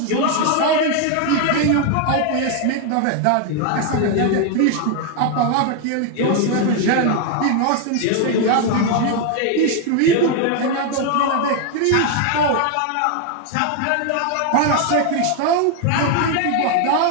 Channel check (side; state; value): both; different; correlation 0.01